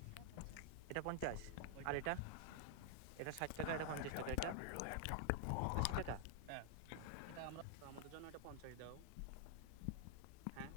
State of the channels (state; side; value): different; both; correlation 0.00